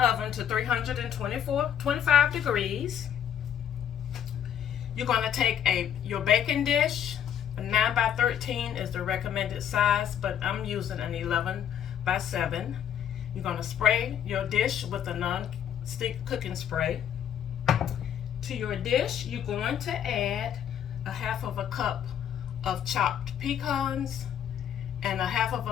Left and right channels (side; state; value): right; quieter; 9.4 dB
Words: oven to 325 degrees. You're going to take your baking dish. A 9 by 13 is the recommended size, but I'm using an 11 by 7. You're going to spray your dish with a non-stick cooking spray. To your dish, you're going to add a half of a cup of chopped pecans and a half of